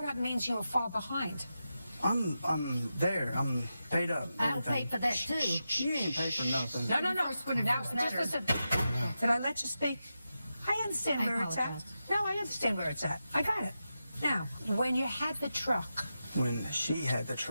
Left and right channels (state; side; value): inverted; both; correlation -0.90